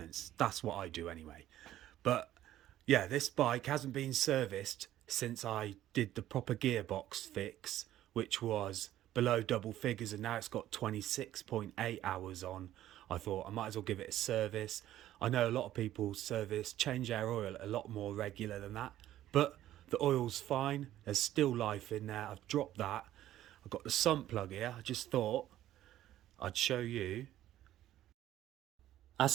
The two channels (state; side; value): quieter; left; 13.2 dB